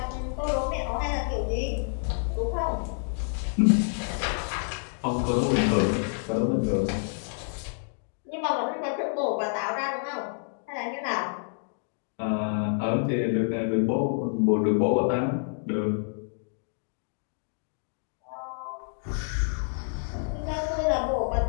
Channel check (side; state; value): right; silent; 59 dB below the other